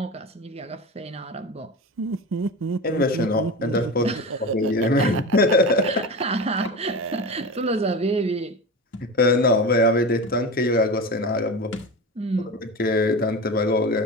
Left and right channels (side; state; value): both; normal; correlation 0.27